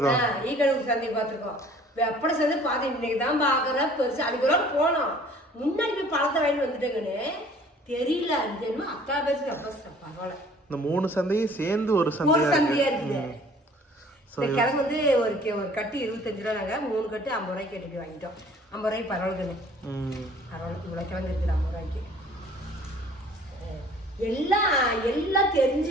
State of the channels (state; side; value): normal; both; correlation 0.53